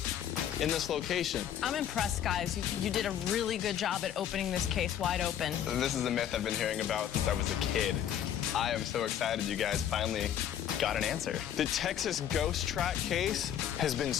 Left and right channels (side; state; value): right; quieter; 10.1 dB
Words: in this location. I'm impressed, guys. You did a really good job at opening this case wide open. This is a myth I've been hearing about since I was a kid. I am so excited you guys finally got an answer. The Texas ghost track case has been